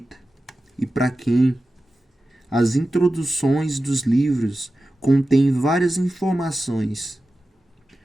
e para quem? As introduções dos livros contêm várias informações,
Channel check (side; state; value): both; normal; correlation 0.94